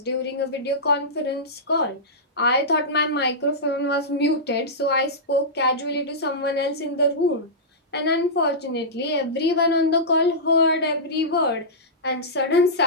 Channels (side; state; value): both; normal; correlation -0.15